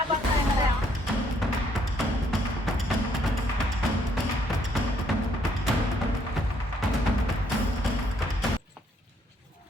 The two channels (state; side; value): normal; both; correlation 0.69